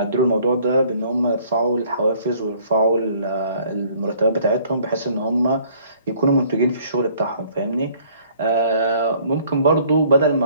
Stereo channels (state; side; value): inverted; both; correlation -0.59